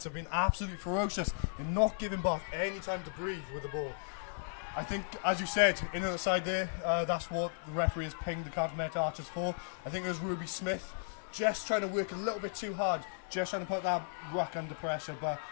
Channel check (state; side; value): silent; right; 54 dB below the other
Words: have been absolutely ferocious. They're not giving Bath any time to breathe with the ball. I think, as you said, in on the side there, that's what the referee has pinged the Cardiff Met Archers for. I think it was Ruby Smith just trying to work a little bit too hard, just trying to put that ruck under pressure. But,